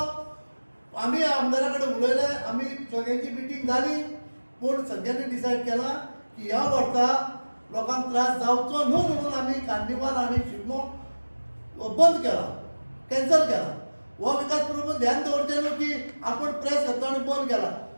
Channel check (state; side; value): inverted; both; correlation -1.00